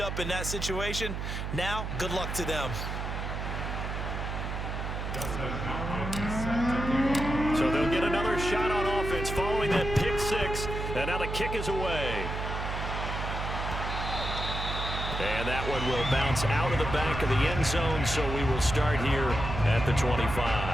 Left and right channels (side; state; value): right; noise; hum, 4 dB below the sound